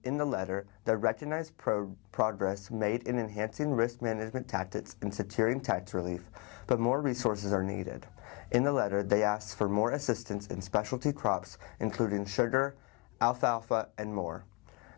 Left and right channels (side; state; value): right; quieter; 27.8 dB